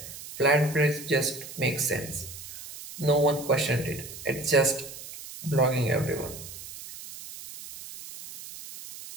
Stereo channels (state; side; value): noise; right; hiss, 13 dB below the sound